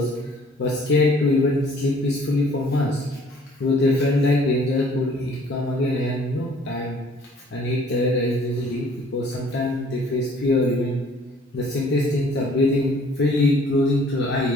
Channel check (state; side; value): normal; both; correlation 0.56